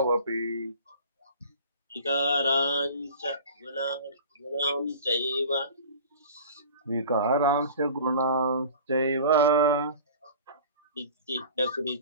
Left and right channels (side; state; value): both; inverted; correlation -0.42